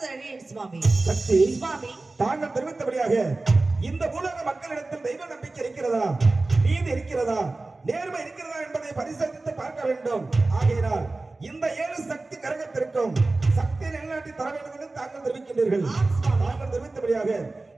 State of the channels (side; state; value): left; quieter; 3.3 dB